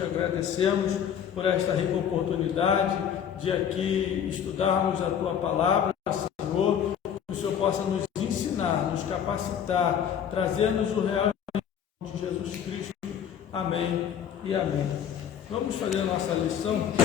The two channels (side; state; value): right; quieter; 8.6 dB